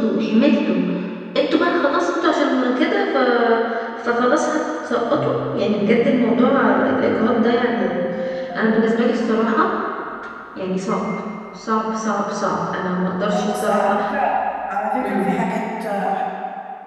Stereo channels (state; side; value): identical; both; correlation 1.00